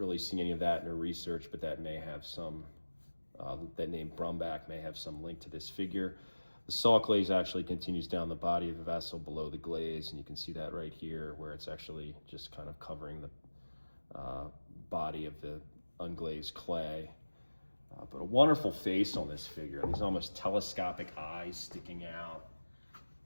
see any of that in her research, but that may have some, that name Brumback may have some link to this figure. The salt glaze actually continues down the body of the vessel below the glaze, and you can see that right here where it's actually just kind of covering the body of the unglazed clay. But a wonderful face on this figure. These almost telescopic eyes sticking out.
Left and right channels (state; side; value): inverted; both; correlation -1.00